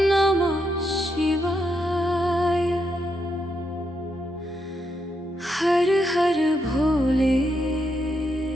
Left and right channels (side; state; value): both; normal; correlation 0.80